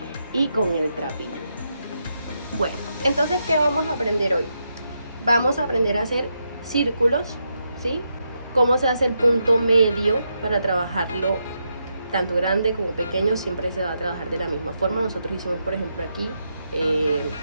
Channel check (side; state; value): both; inverted; correlation -0.83